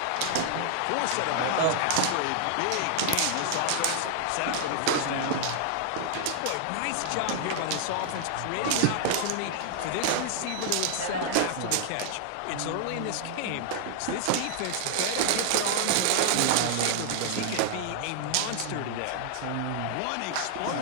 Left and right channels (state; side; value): different; both; correlation 0.00